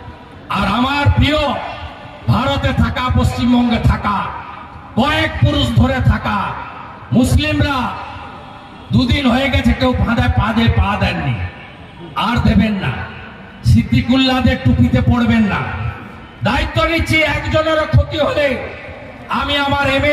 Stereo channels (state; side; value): identical; both; correlation 1.00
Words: আর আমার প্রিয় ভারতে থাকা, পশ্চিমবঙ্গে থাকা, কয়েক পুরুষ ধরে থাকা মুসলিমরা দুদিন হয়ে গেছে কেউ ফাঁদায় পা দেননি, আর দেবেন না। সিদ্দিকুল্লাহদের টুপিতে পড়বেন না। দায়িত্ব নিচ্ছি, একজনেরও ক্ষতি হলে আমি আমার